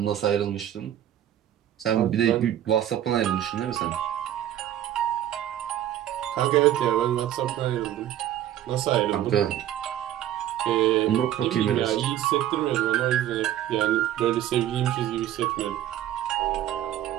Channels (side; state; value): left; quieter; 11.9 dB